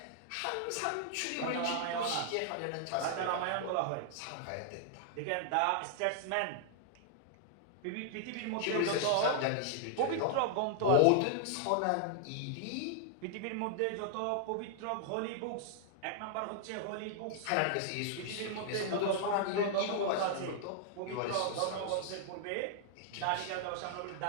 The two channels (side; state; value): both; different; correlation -0.01